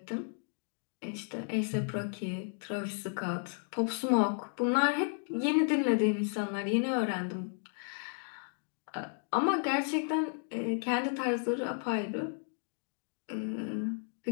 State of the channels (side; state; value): right; silent; 55 dB below the other